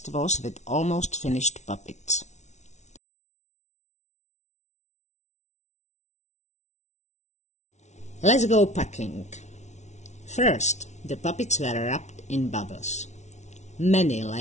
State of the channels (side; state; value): right; late; 0.33 ms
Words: was with almost finished puppets. Let's go packing. First, the puppets were wrapped in bubbles. Many